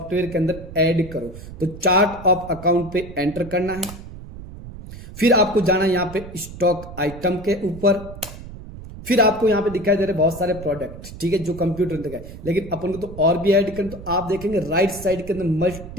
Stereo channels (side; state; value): right; noise; rumble, 14 dB below the sound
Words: के अंदर ऐड करो, तो चार्ट ऑफ अकाउंट पे एंटर करना है। फिर आपको जाना है यहाँ पे स्टॉक आइटम के ऊपर, फिर आपको यहाँ पे दिखाई दे रहे बहुत सारे प्रोडक्ट, ठीक है, जो कंप्यूटर दिखाए, लेकिन अपन को तो और भी ऐड करें तो आप देखेंगे राइट साइड के अंदर